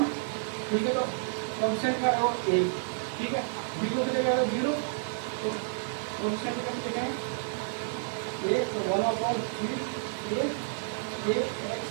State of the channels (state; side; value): silent; left; digital silence